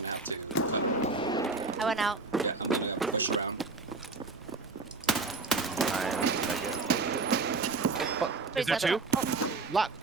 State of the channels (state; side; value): quieter; left; 3.8 dB